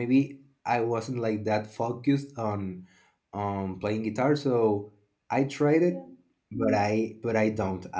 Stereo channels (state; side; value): identical; both; correlation 1.00